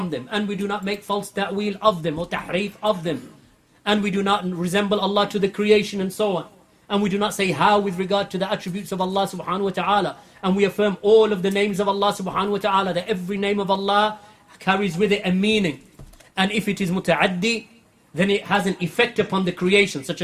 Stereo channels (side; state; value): both; identical; correlation 1.00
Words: them, and we do not make false ta'wil of them or tahrif of them, and we do not resemble Allah to the creation and so on. And we do not say how with regard to the attributes of Allah subhanahu wa ta'ala. And we affirm all of the names of Allah subhanahu wa ta'ala, that every name of Allah carries with it a meaning. And if it is muta'addi, then it has an effect upon the creation, such